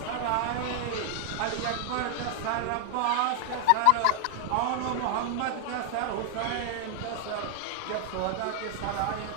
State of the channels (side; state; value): both; different; correlation 0.00